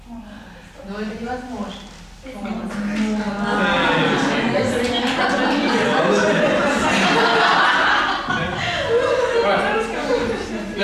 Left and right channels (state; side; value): identical; both; correlation 1.00